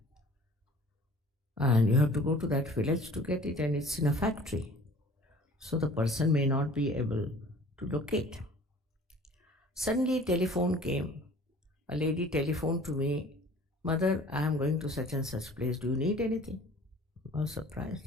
And you have to go to that village to get it, and it's in a factory. So the person may not be able to locate. Suddenly telephone came. A lady telephoned to me, Mother, I am going to such and such place. Do you need anything? I was surprised,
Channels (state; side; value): normal; both; correlation 0.48